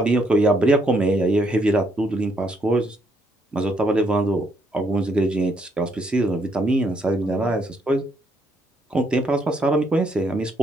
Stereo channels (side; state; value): both; normal; correlation 0.72